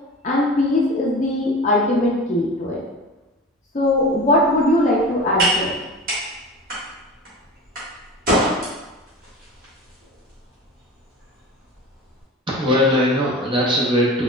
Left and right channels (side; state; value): both; normal; correlation 0.34